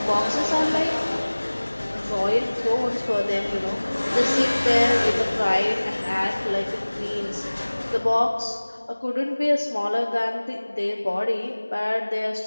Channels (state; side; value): inverted; both; correlation -1.00